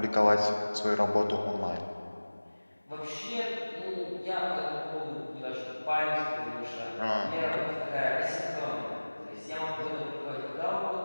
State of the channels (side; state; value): both; inverted; correlation -1.00